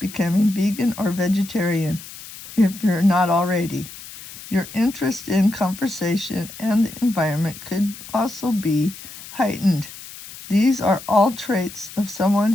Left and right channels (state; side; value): noise; left; hiss, 15 dB below the sound